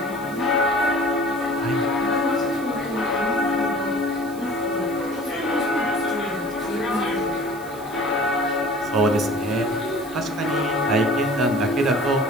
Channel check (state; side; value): noise; right; hiss, 21 dB below the sound